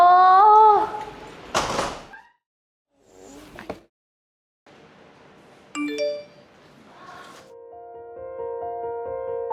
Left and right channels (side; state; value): both; identical; correlation 1.00